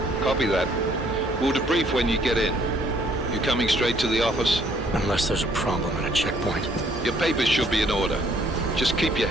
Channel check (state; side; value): normal; both; correlation 0.63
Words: Copy that. We'll debrief when you get in. You coming straight to the office? Unless there's a problem at a checkpoint. Your papers should be in order. Just keep your